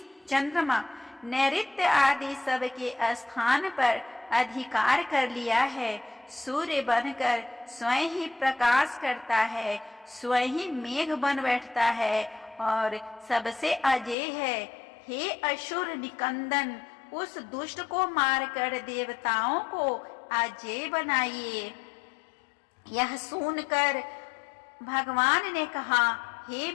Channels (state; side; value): drops out; right; at 14.2 s